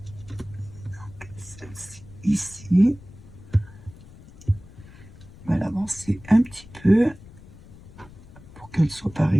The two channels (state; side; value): noise; left; rumble, 20 dB below the sound